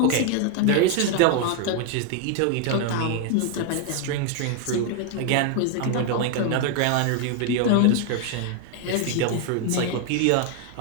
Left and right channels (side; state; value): both; different; correlation 0.01